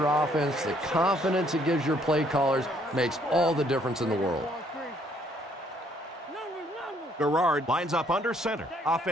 offense, the confidence it gives your play callers makes all the difference in the world. Garrard lines up under center.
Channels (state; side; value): normal; both; correlation 0.66